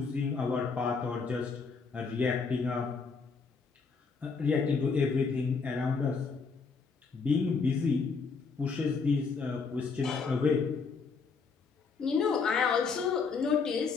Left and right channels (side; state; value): right; quieter; 4.9 dB